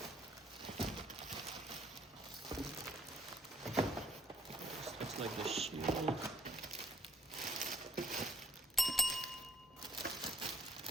Looks like the shield.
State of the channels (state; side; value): normal; both; correlation 0.66